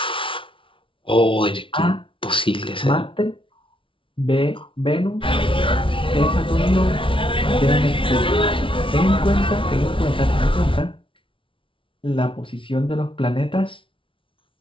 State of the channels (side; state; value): right; late; 0.25 ms